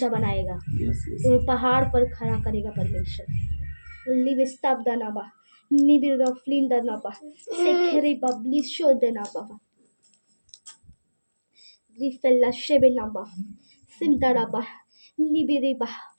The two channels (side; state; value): both; inverted; correlation -1.00